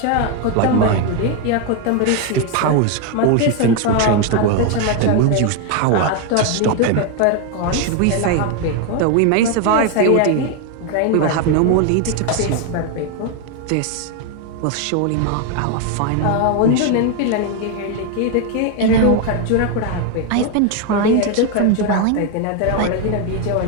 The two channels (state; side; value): different; both; correlation 0.01